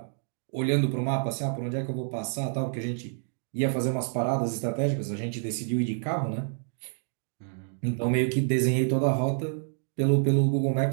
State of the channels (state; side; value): silent; left; digital silence